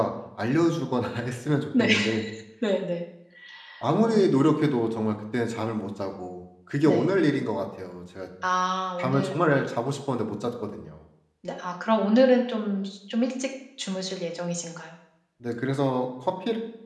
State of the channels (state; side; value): identical; both; correlation 1.00